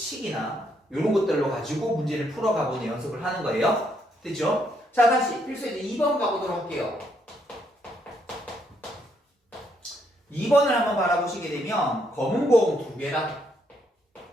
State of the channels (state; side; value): normal; both; correlation 0.73